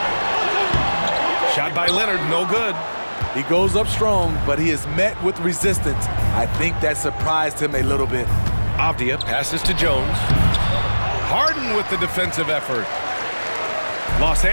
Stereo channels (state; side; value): inverted; both; correlation -1.00